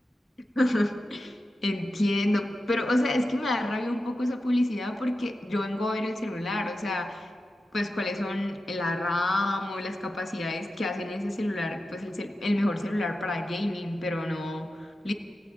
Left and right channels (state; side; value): normal; both; correlation 0.92